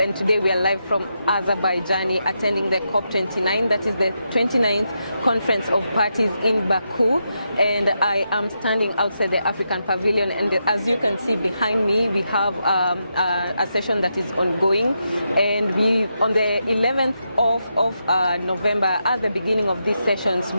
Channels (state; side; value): inverted; both; correlation -0.84